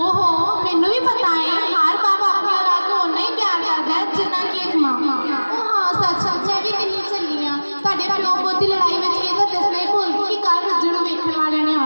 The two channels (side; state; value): both; inverted; correlation -1.00